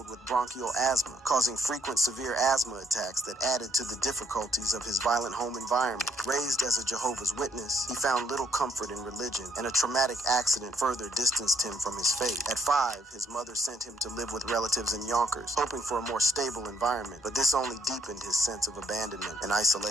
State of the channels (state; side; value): normal; both; correlation 0.70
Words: with bronchial asthma, causing frequent severe asthma attacks that added to the difficulties of his violent home environment. Raised as a Jehovah's Witness, he found little comfort in religion, and a traumatic accident further distanced him from his faith. At 5, his mother sent him to live with relatives in Yonkers, hoping for a more stable environment, but this only deepened his sense of abandonment and